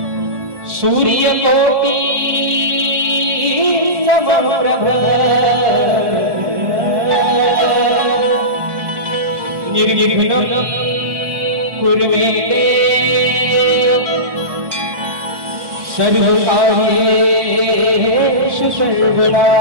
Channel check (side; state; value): left; late; 1.2 ms